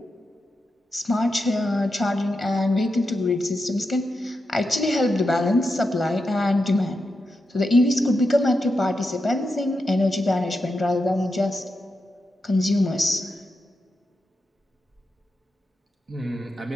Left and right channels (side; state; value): both; normal; correlation 0.87